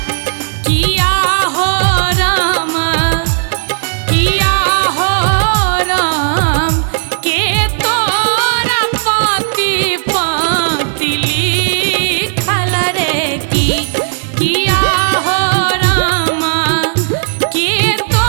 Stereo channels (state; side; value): silent; left; digital silence